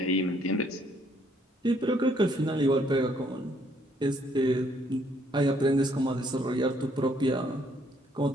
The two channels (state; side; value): normal; both; correlation 0.67